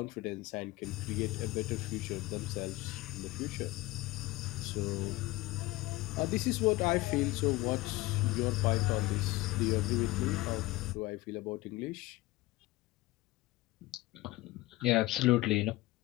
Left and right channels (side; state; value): right; quieter; 19.8 dB